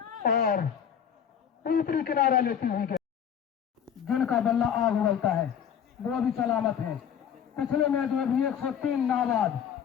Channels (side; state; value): right; quieter; 8.5 dB